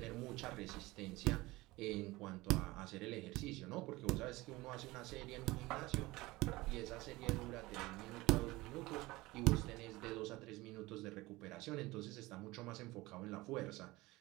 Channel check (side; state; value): left; quieter; 20.4 dB